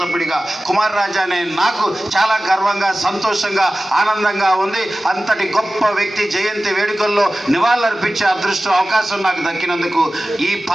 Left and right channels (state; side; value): normal; both; correlation 0.96